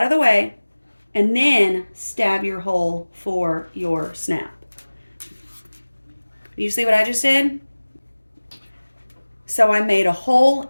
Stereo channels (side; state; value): both; inverted; correlation -1.00